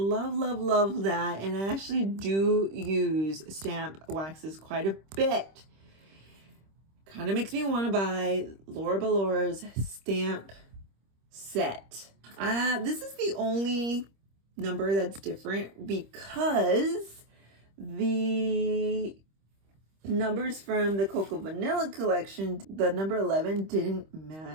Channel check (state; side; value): late; left; 26 ms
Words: that. And I actually do use stamp waxes quite a bit. Kind of makes me want to buy Laura Balora's stamp set. This is the only number that's different because the numbers from the Cocoa Vanilla collection, the number 11 didn't